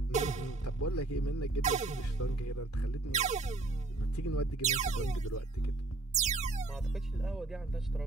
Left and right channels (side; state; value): left; quieter; 3.2 dB